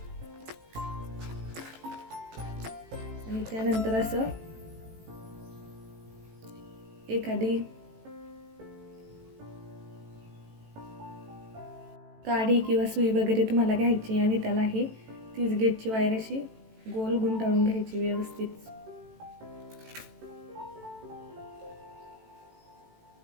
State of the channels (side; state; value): left; late; 18 ms